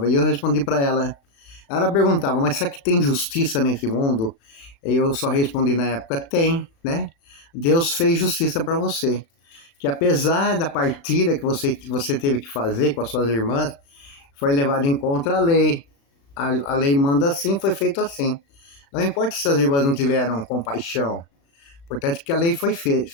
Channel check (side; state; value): right; late; 36 ms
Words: e eu respondi para ela. Ela perguntava, mas será que tem justiça nesse mundo? E eu só respondi na época, tem, né? Deus fez justiça para você. Que apesar da partilha que você teve que fazer com as suas irmãs, foi levado em conta a lei. A lei manda assim, foi feito assim. Não importa se as irmãs não tiveram compaixão. Importante que a lei foi